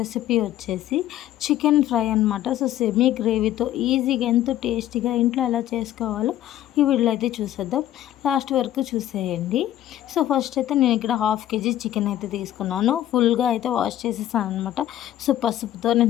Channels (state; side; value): quieter; right; 12.7 dB